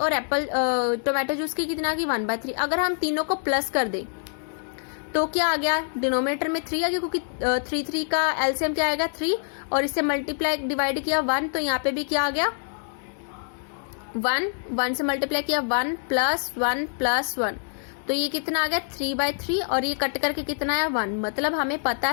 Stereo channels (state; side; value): silent; right; digital silence